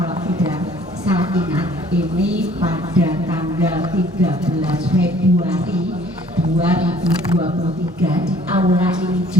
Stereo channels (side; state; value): both; normal; correlation 0.56